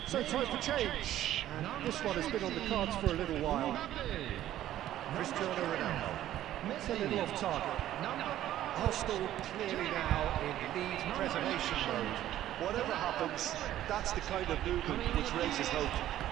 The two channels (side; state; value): left; quieter; 12.8 dB